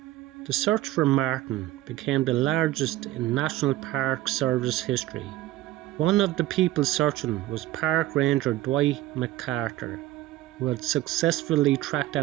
The search for Martin became the largest in National Park Service history. One of the people searching was Park Ranger Dwight McCarter, who had successfully tracked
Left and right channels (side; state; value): left; quieter; 15.6 dB